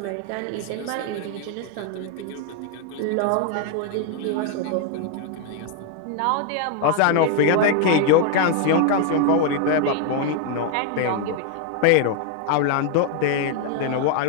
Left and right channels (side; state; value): both; different; correlation 0.00